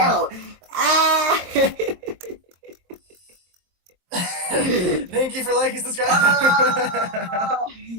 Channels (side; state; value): left; late; 23 ms